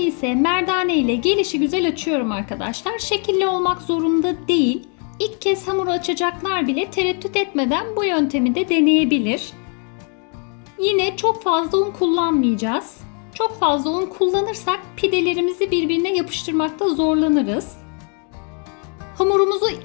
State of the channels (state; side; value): quieter; right; 40.0 dB